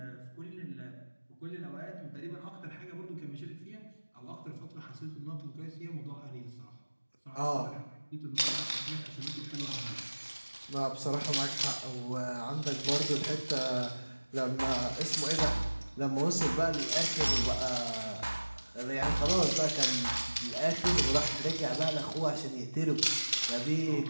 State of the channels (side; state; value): both; inverted; correlation -1.00